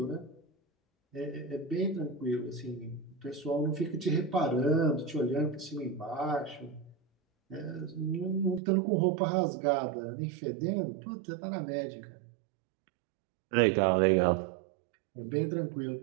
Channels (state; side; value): drops out; left; at 8.6 s